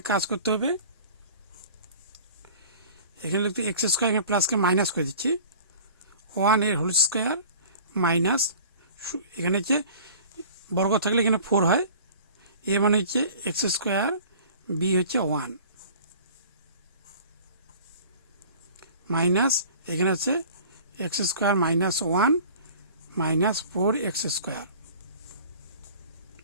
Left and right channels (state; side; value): inverted; both; correlation -0.45